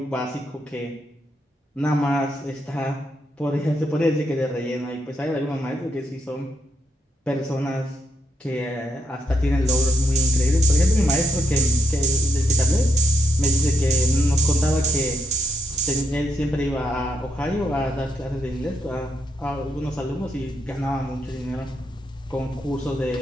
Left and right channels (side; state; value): both; normal; correlation 0.78